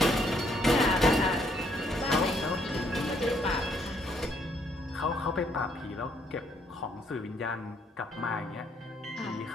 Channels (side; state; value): both; normal; correlation 0.69